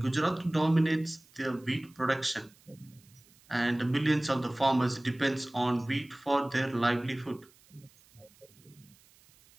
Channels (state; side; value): noise; right; hiss, 29 dB below the sound